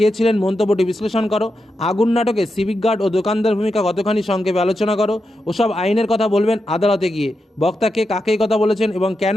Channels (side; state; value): both; normal; correlation 0.87